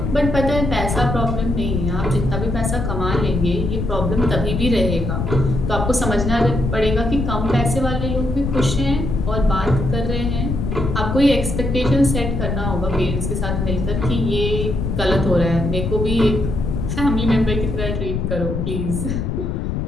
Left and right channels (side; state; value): left; noise; rumble, 2 dB below the sound